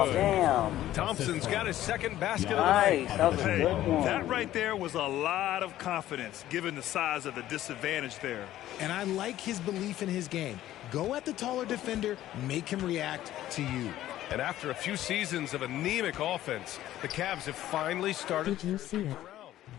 is good. Damn. Thompson's got his second basket of the Nice. night. That was a good one. That right there was a lot of confidence, given the size of the disadvantage there. And I like his belief in his game. Go at the taller defender, make him react to you. And after a few seasons of anemic offense, the Cavs have finally started. Did you see it?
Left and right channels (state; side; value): quieter; right; 13.6 dB